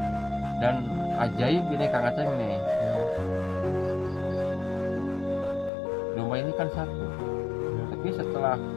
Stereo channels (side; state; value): right; drops out; at 5.7 s